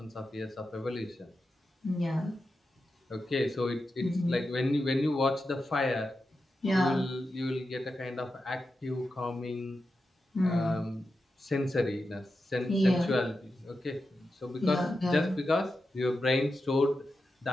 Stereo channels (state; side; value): normal; both; correlation 0.90